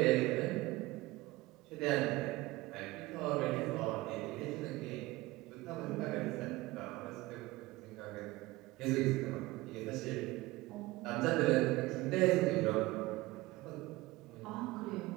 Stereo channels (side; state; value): left; quieter; 20.0 dB